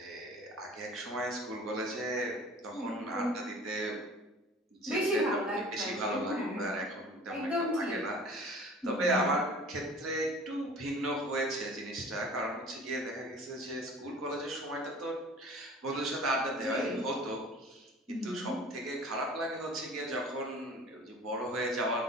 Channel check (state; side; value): normal; both; correlation 0.45